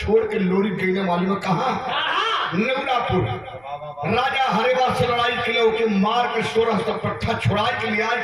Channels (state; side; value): noise; right; rumble, 29 dB below the sound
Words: छोड़ के लोरी गईने वाली में कहा नेवरापुर राजा हरेवा से लड़ाई के लिए ओके मार के 1600 पट्टा छोड़ा के लिए आए